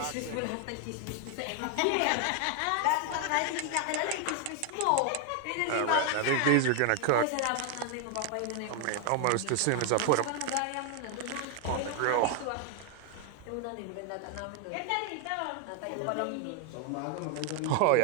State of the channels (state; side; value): different; both; correlation 0.00